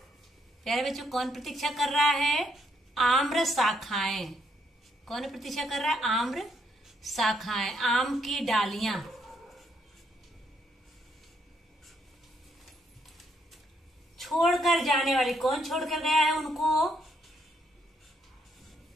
प्यारे बच्चों, कौन प्रतीक्षा कर रहा है? आम्र शाखाएं। कौन प्रतीक्षा कर रहा है? आम्र शाखाएं, आम की डालियां। छोड़कर जाने वाली, कौन छोड़कर गया है उनको?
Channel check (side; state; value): both; normal; correlation 0.73